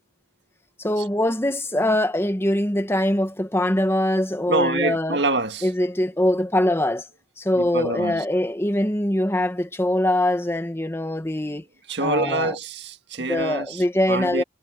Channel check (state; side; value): normal; both; correlation 0.70